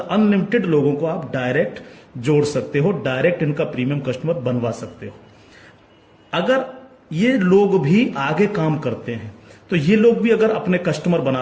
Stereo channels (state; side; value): identical; both; correlation 1.00